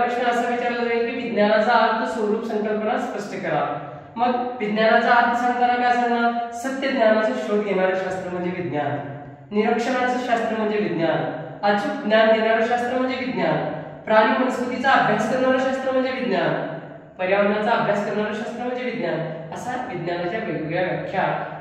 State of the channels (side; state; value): both; identical; correlation 1.00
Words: प्रश्न असा विचारला जाईल की विज्ञानाचा अर्थ, स्वरूप, संकल्पना स्पष्ट करा। मग विज्ञानाचा अर्थ सांगताना काय सांगणार? सत्य ज्ञानाचा शोध घेणारे शास्त्र म्हणजे विज्ञान, निरीक्षणाचं शास्त्र म्हणजे विज्ञान, अचूक ज्ञान देणारं शास्त्र म्हणजे विज्ञान, प्राणी वनस्पतीचा अभ्यास करणारं शास्त्र म्हणजे विज्ञान, पर्यावरणाचा अभ्यास करणारं शास्त्र म्हणजे विज्ञान, असा विज्ञानाच्या वेगवेगळ्या व्याख्या,